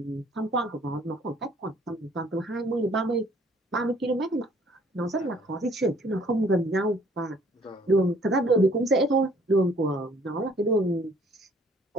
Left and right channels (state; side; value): normal; both; correlation 0.59